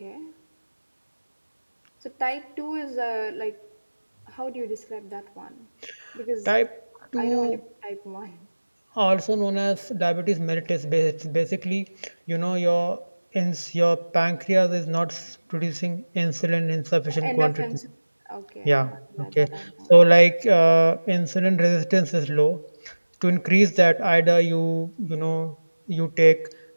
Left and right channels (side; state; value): both; inverted; correlation -1.00